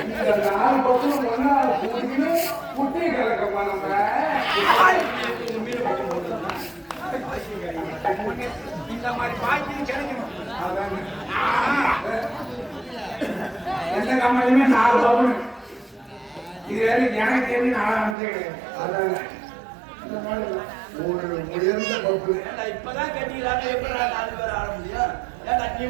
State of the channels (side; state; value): left; drops out; at 18.2 s